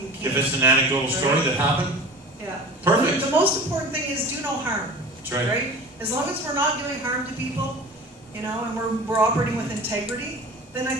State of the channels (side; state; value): both; normal; correlation 0.38